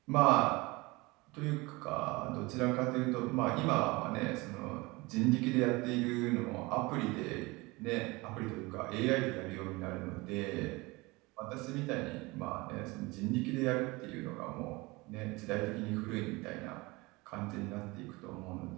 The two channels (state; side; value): quieter; left; 23.6 dB